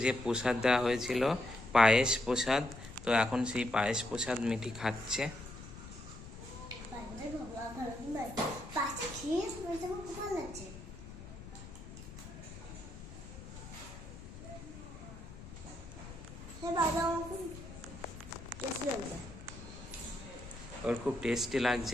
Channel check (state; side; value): noise; left; rumble, 14 dB below the sound